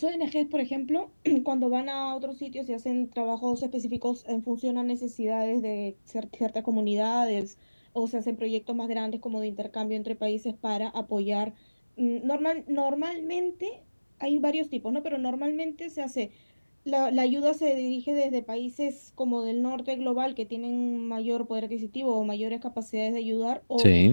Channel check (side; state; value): both; inverted; correlation -1.00